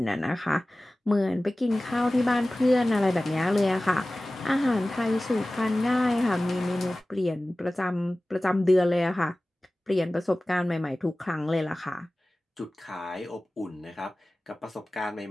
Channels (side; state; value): both; normal; correlation 0.97